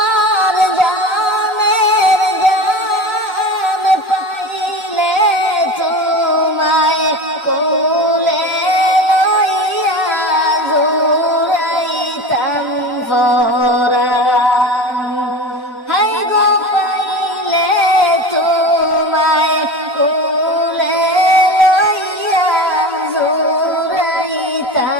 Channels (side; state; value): both; normal; correlation 0.30